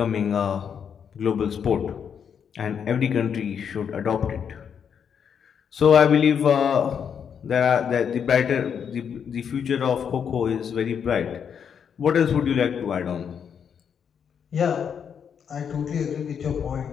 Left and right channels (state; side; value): quieter; right; 7.5 dB